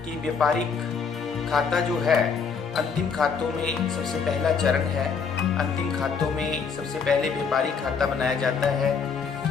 कि व्यापारिक खाता जो है अंतिम खातों में सबसे पहला चरण है. अंतिम खातों में सबसे पहले व्यापारिक खाता बनाया जाता है.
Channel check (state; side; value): quieter; right; 5.8 dB